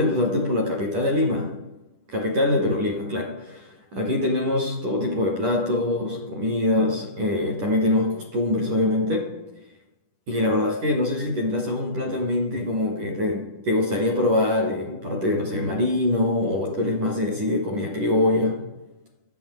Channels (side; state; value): left; late; 10 ms